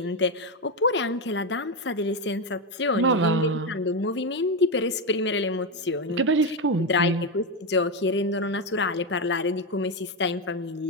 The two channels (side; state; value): both; normal; correlation 0.09